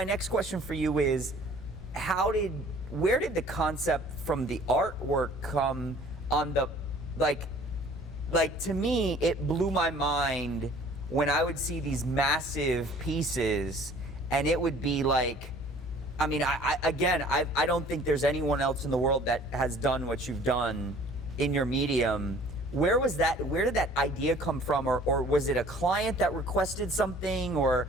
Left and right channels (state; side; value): normal; both; correlation 0.52